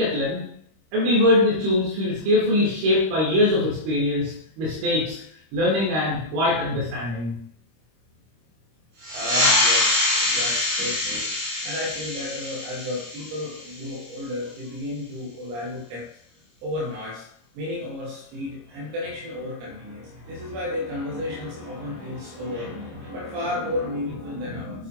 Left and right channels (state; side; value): late; left; 26 ms